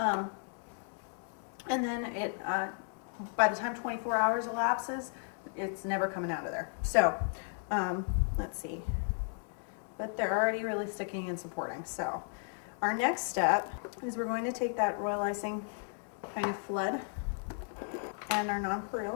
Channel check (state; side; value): silent; right; 55 dB below the other